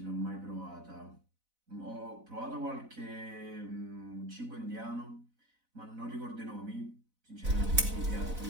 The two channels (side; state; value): left; late; 4.0 ms